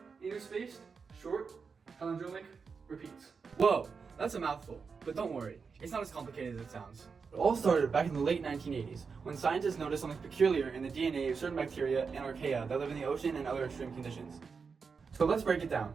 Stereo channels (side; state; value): left; quieter; 5.4 dB